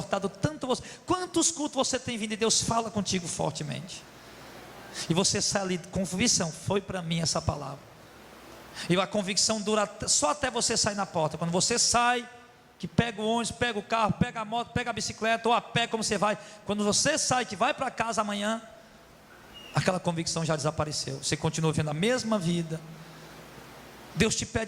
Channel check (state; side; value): identical; both; correlation 1.00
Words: tanto você. Quantos cultos você tem vindo e Deus fala contigo fortemente? E você sai ali com convicção, foi para mim essa palavra. E a convicção dura só até você sair na porta. Quando você sai, que pega o ônibus, pega o carro, pega a moto, pega a bicicleta, ou a pé, como você vai. Quando você sai, que vai para casa amanhã, aquela convicção já desapareceu. Você continua vivendo a mesma vida. Deus te